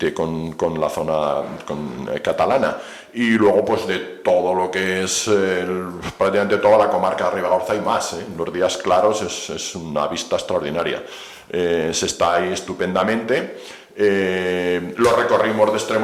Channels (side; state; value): both; identical; correlation 1.00